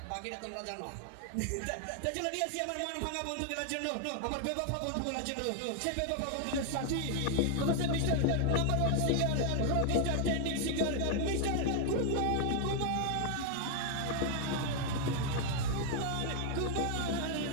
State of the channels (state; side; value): different; both; correlation 0.00